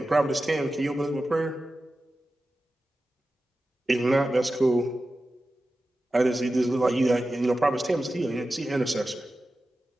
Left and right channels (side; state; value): both; normal; correlation 0.93